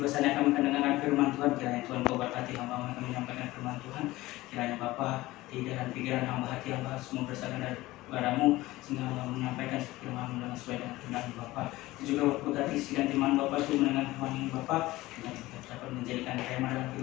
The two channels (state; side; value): quieter; right; 18.3 dB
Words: saatnya kami akan mendengarkan firman Tuhan, kiranya Tuhan Kau berkati hamba yang akan menyampaikan firman Tuhan. Kiranya Bapa, lidah dan pikiran hamba, hati hamba semua berasal dari Bapa-Mu, sehingga hamba menyampaikan firman-Mu dengan sesuai dengan kehendak Bapa. Juga berkati isi dan firman Bapa itu mendengar firman ini Bapa, dan dapat menjadikan rema dalam